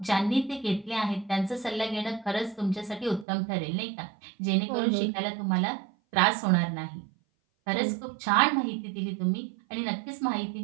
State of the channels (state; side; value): drops out; left; at 3.2 s